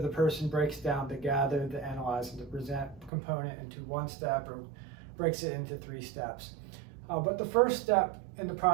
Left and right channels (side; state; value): left; drops out; at 3.1 s